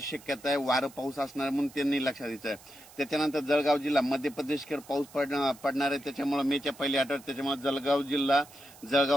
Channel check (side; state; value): right; noise; hiss, 22 dB below the sound